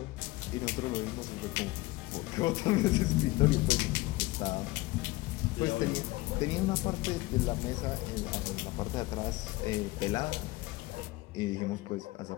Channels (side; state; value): right; quieter; 20.5 dB